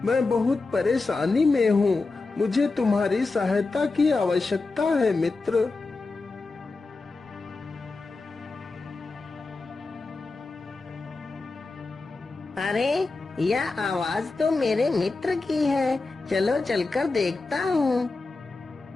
मैं बहुत परेशानी में हूँ, मुझे तुम्हारी सहायता की आवश्यकता है मित्र। अरे, यह आवाज तो मेरे मित्र की है, चलो चलकर देखता हूँ।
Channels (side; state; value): right; quieter; 3.7 dB